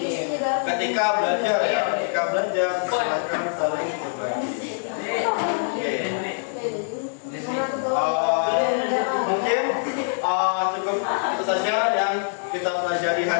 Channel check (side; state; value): right; silent; digital silence